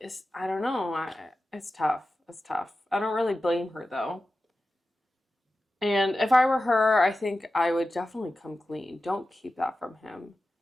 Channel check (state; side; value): normal; both; correlation 0.94